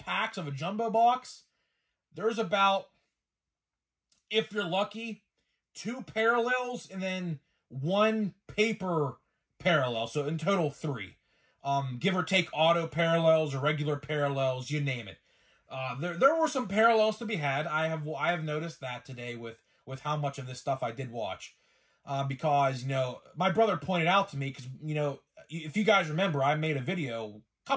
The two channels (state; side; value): identical; both; correlation 1.00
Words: of a jumbo box, there's about, if you're lucky, 2 parallels and then 1 paper parallel. So in total 3. Give or take auto parallels or regular parallels, you name it. There were some parallels to be had. I have noticed that today with how much of this stuff I did watch. Because, you know, my brother pointed out to me, because, you know, if you guys remember, I made a